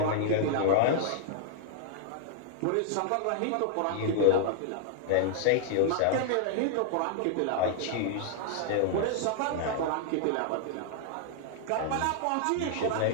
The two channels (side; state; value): both; different; correlation 0.00